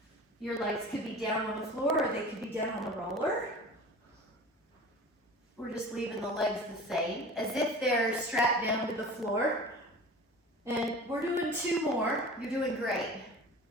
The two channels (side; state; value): both; normal; correlation 0.38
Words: Your legs could be down on the floor or they could be down on the roller. We're just leaving the legs the same, as if they're strapped down to the floor. And we're doing 2 more. You're doing great.